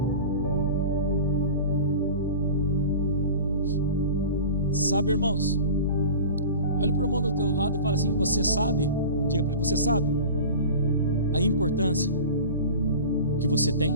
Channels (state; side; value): inverted; both; correlation -0.35